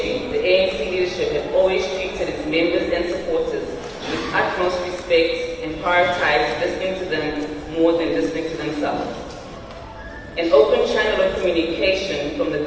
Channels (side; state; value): both; identical; correlation 1.00